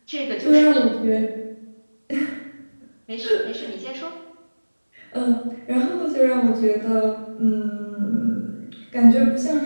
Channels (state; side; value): inverted; both; correlation -1.00